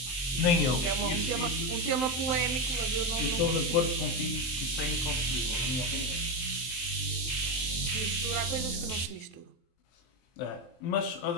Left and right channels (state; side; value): late; right; 23 ms